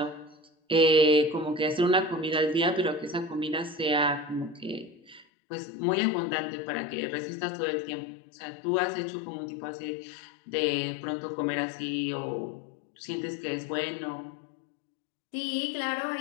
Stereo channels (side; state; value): right; drops out; at 5.2 s